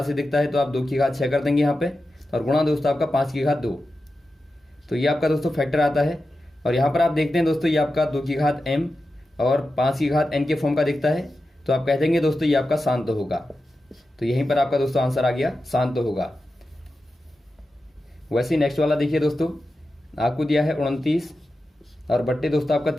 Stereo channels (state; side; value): normal; both; correlation 0.92